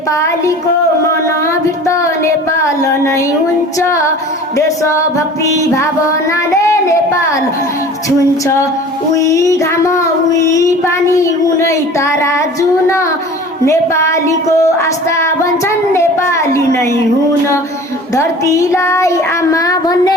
मनभित्र नेपाल नै हुन्छ देशभक्ति भावनाले नेपाल छुन्छ उही घाम उही पानी उनै तारा जुन नेपालीको आस्था भन्छन् नेपाली नै हुन धरतीलाई आमा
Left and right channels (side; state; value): both; normal; correlation 0.42